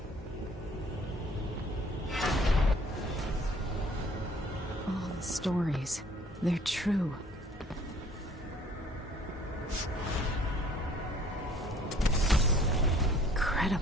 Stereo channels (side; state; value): both; normal; correlation 0.56